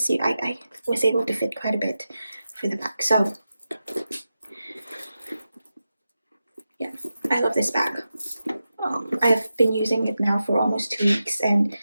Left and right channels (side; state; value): both; inverted; correlation -0.91